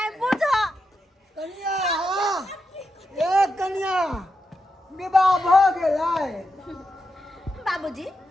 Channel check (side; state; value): both; normal; correlation 0.86